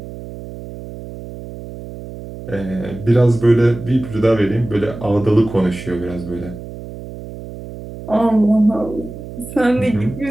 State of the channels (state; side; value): noise; right; hum, 13 dB below the sound